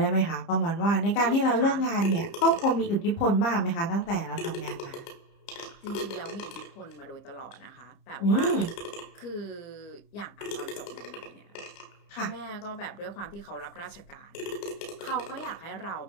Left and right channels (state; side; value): late; right; 30 ms